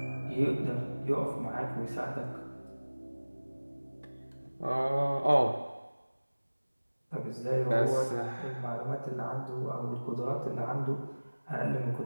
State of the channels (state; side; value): inverted; both; correlation -1.00